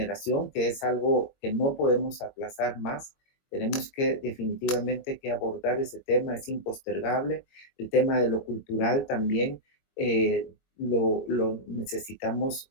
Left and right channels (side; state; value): right; late; 22 ms